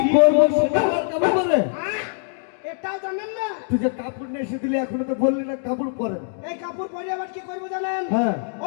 করবো সেটা আমার কাপড় বলে? এটাও জানেন না? তুই যে কাপড় নিয়ে এসে দিলি এখনো তো বললি না কাপড় পরেন। এই কাপড় পরে আবার কি করবো জানেন? হ্যাঁ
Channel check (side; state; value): right; silent; digital silence